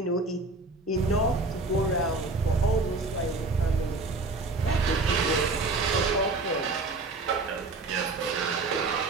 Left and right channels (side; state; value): left; quieter; 3.5 dB